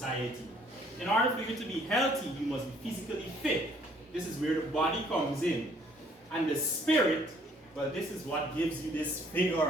In order for you to be healthy, you must be physically fit. This is where the body comes in. And the spirit, well, this is what gives you this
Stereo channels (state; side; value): normal; both; correlation 0.61